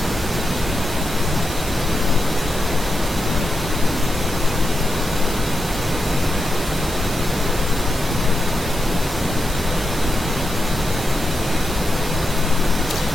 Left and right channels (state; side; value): normal; both; correlation 0.86